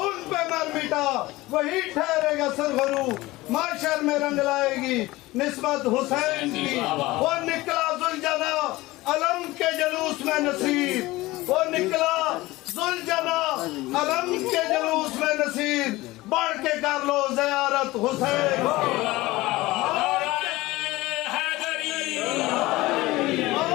ان پہ مر مٹا وہی ٹھہرے گا سرخرو، معاشر میں رنگ لائے گی نسبت حسین کی۔ وہ نکلا ذوالجنا علم کے جلوس میں نصیر، وہ نکلا ذوالجنا علم کے جلوس میں نصیر، بڑھ کے کر لو زیارت حسین کی۔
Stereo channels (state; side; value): quieter; right; 19.3 dB